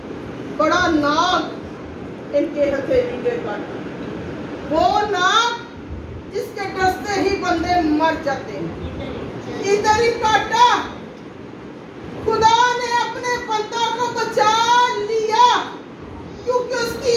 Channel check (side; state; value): both; identical; correlation 1.00